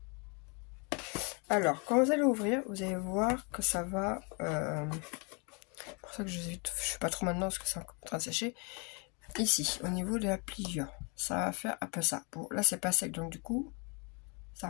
Alors, quand vous allez ouvrir, vous allez voir que ça va... pour ça que je ne fais pas trop maintenant parce que c'est en train de sécher. Ici, au niveau de la pliure, ça va faire un peu ça. Bon, là, c'est pas sec, donc du coup, ça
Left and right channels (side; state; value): right; quieter; 33.5 dB